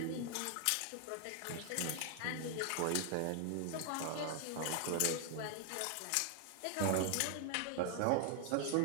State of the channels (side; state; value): both; different; correlation 0.00